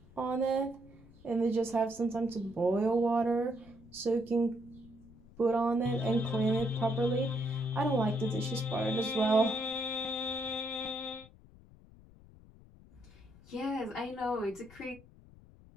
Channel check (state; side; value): noise; left; rumble, 23 dB below the sound